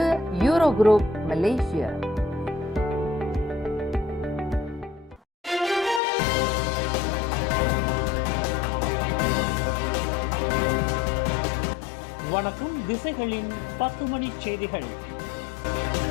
யூரோ குரூப் மலேசியா. வணக்கம். திசைகளின் 10 மணி செய்திகள்.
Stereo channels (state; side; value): drops out; right; at 6.0 s